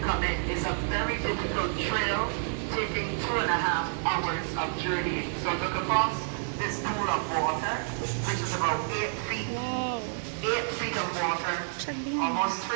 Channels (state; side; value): silent; left; digital silence